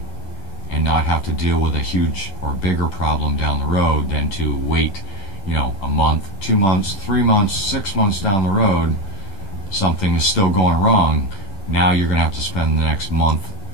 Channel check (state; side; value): late; right; 10 ms